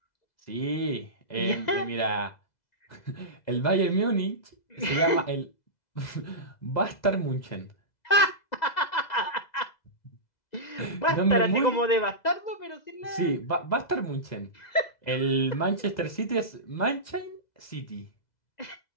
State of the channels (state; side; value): late; right; 2.0 ms